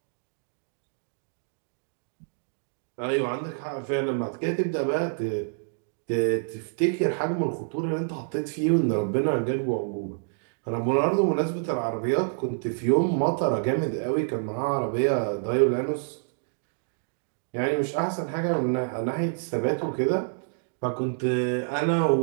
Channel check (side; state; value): left; silent; digital silence